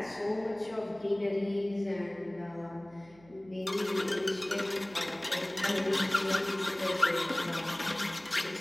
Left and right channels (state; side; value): noise; right; hum, 26 dB below the sound